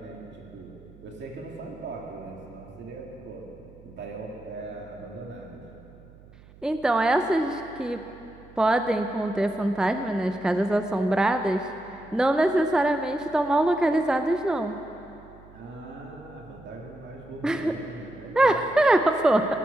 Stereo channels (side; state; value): right; noise; hum, 23 dB below the sound